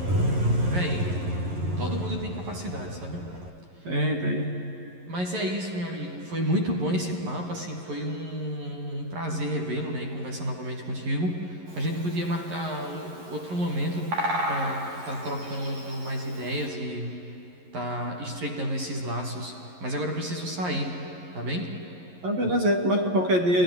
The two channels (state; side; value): late; left; 11 ms